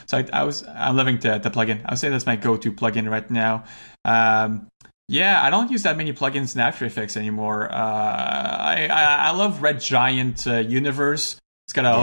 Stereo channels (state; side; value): inverted; both; correlation -1.00